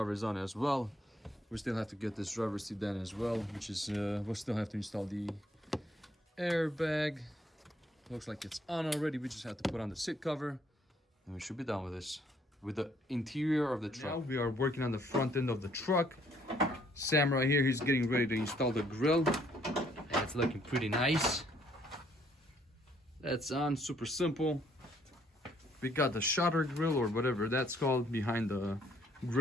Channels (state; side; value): normal; both; correlation 0.66